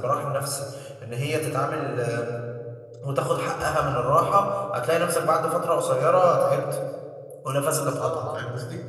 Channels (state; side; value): identical; both; correlation 1.00